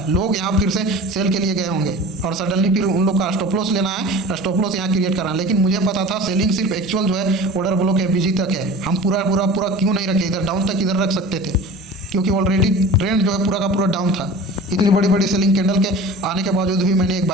लोग यहाँ फिर से सेल के लिए गए होंगे और सडनली फिर उन लोग का स्टॉप लॉस लेना है, स्टॉप लॉस यहाँ क्रिएट करना है। लेकिन मुझे पता था सेलिंग सिर्फ एक्चुअल जो है ऑर्डर ब्लॉक एबीजी तक है, हम पूरा क्यों नहीं रखे, इधर डाउन तक इधर रख सकते थे क्योंकि ऑलरेडी ट्रेंड जो है पूरा का पूरा डाउन था। इतनी बड़ी बड़ी सेलिंग कैंडल के आने के बावजूद भी मैंने एक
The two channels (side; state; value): both; normal; correlation 0.38